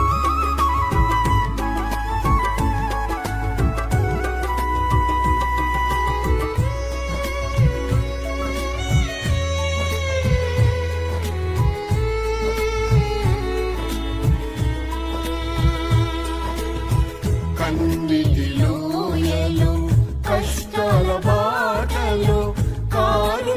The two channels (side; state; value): both; identical; correlation 1.00